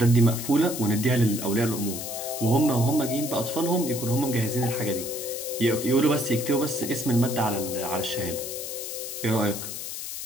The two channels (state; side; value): noise; left; hiss, 7 dB below the sound